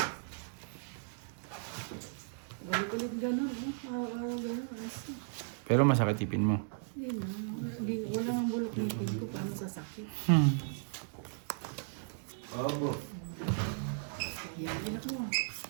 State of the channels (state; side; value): silent; left; digital silence